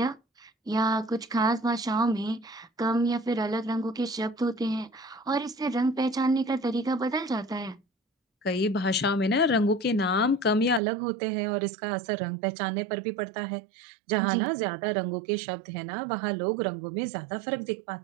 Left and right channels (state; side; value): drops out; left; at 10.8 s